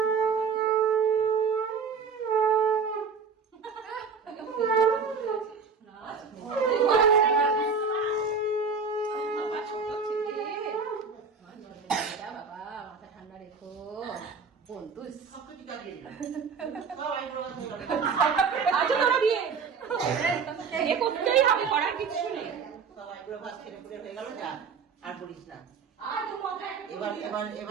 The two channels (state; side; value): quieter; left; 5.5 dB